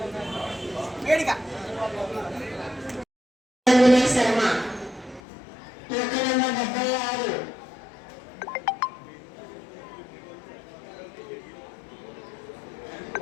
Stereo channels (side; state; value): right; drops out; at 5.2 s